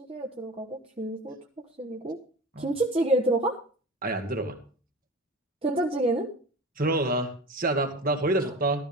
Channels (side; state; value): both; normal; correlation 0.33